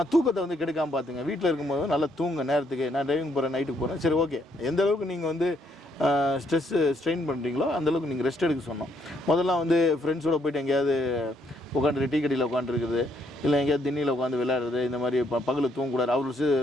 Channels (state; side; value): normal; both; correlation 0.72